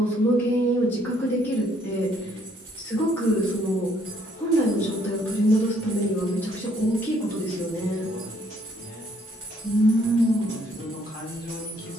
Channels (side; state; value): both; normal; correlation 0.66